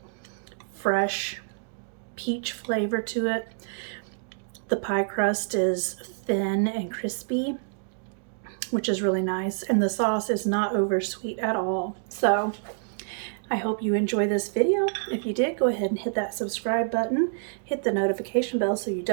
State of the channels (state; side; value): silent; left; digital silence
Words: fresh peach flavor to it. The pie crust is thin and crispy, which is really nice. And the sauce is not over sweet at all. So I hope you enjoy this video. If you did, go ahead and hit that subscribe button. Hit the notification bell so you